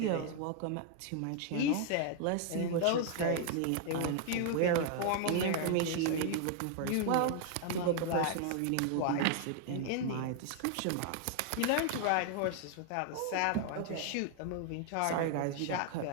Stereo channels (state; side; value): different; both; correlation 0.00